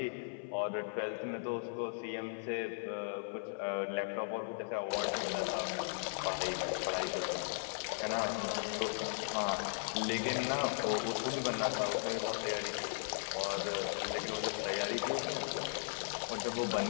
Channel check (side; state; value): right; silent; 53 dB below the other